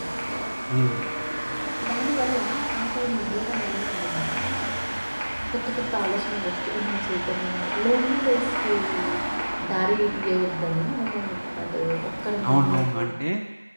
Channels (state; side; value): inverted; both; correlation -1.00